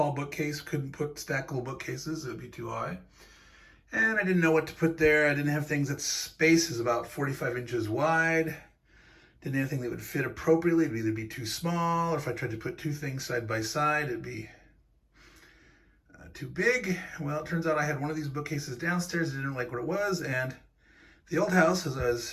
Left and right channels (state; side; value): identical; both; correlation 1.00